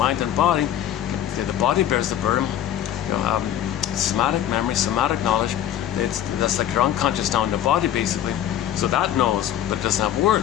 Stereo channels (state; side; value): quieter; right; 11.1 dB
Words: and body. The body bears the burden. Somatic memory, somatic knowledge, that's like your unconscious now in the body basically. So that knows, but it doesn't have